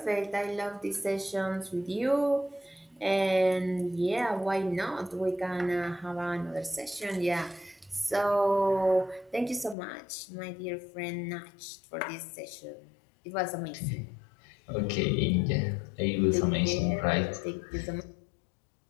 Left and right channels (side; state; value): right; drops out; at 9.8 s